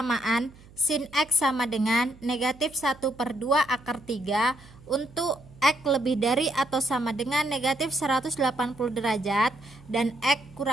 sin X sama dengan negatif 1/2 akar 3 untuk X lebih dari atau sama dengan negatif 180 derajat dan X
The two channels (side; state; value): right; noise; hum, 23 dB below the sound